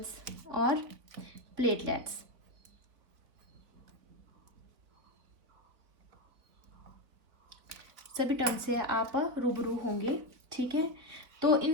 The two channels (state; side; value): late; left; 3.8 ms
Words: और प्लेटलेट्स। सभी टर्म से आप रूबरू होंगे। ठीक है, तो